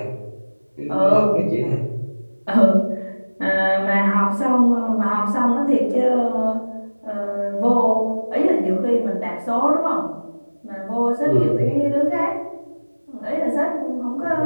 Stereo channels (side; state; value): both; inverted; correlation -1.00